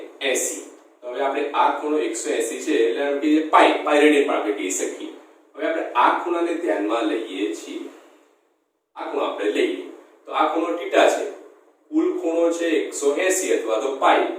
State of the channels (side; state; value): both; identical; correlation 1.00